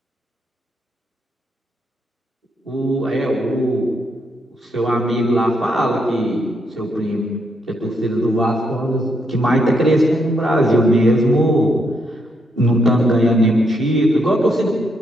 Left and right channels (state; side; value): normal; both; correlation 0.77